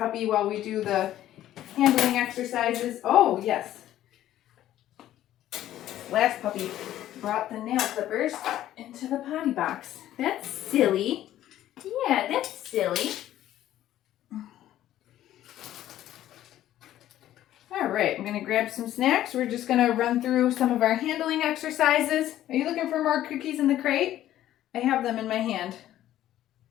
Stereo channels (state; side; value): quieter; right; 12.9 dB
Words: while we do the handling exercises. Oh, yes. Last puppy brought the nail clippers into the potty box. That's silly. Yeah, that's silly. All right, I'm going to grab some snacks. We're just going to run through some of our handling exercises. Are you looking for more cookies in the crate? I have them in my hand.